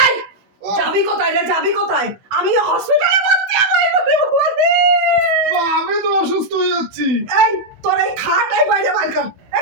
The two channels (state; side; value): late; left; 16 ms